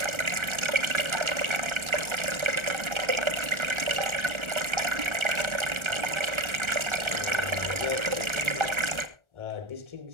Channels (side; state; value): left; late; 1.4 ms